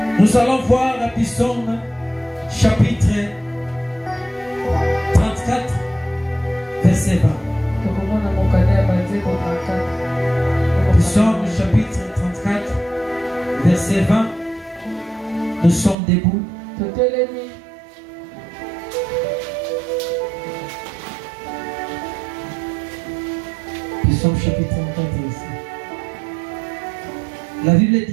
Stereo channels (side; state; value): left; drops out; at 16.0 s